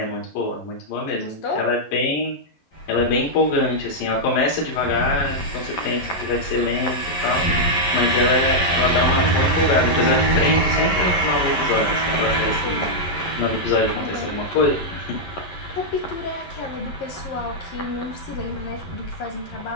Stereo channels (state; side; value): late; right; 11 ms